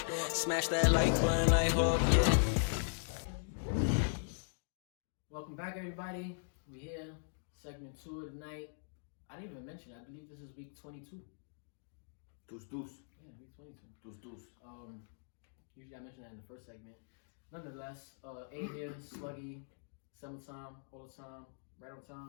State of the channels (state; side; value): silent; right; digital silence